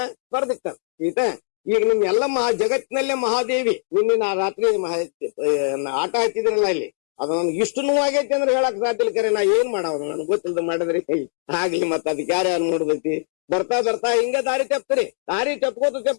ಬರ್ದಿರ್ತಾರೆ. ಈಗ ನಿಮ್ ಎಲ್ಲ ಜಗತ್ತಿನಲ್ಲೇ ಮಹಾದೇವಿ ನಿನ್ನ ರಾತ್ರಿ ಆಟ ಹಾಕಿದ್ರಲ್ಲ ಇಲ್ಲಿ, ಅದು ನನ್ಗೆ ಇಷ್ಟು ನೋವಾಗೈತಿ ಅಂದ್ರೆ ಹೇಳಕ್ ಸಾಧ್ಯ ಇಲ್ಲ. ಕರೆ ನಾ ಏನ್ ಮಾಡವ್ರು ನನ್ಗೆ ಗೊತ್ತಿಲ್ದ ಮಾಡಿದ್ರಿ ಆಗ್ಲಿ. ಮತ್ತ ಅದಕ್ಕೆ ಯಾರ್ಯಾರು ನೋಡ್ದೈತಿ. ಬರ್ತಾ ಹಿಂಗ ದಾರಿ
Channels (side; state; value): right; silent; digital silence